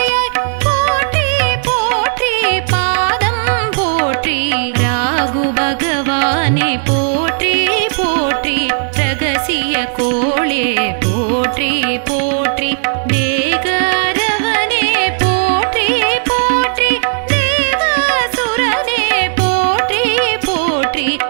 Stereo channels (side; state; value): left; silent; digital silence